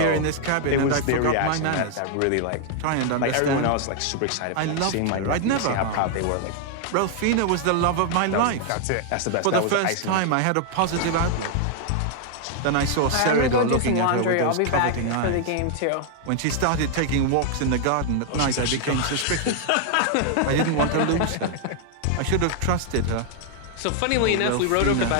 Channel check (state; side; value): different; both; correlation 0.00